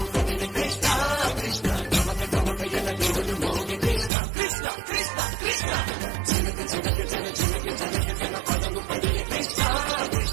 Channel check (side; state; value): left; drops out; at 4.1 s